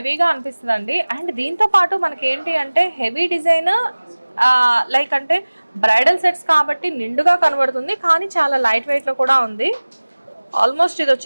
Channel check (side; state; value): both; inverted; correlation -1.00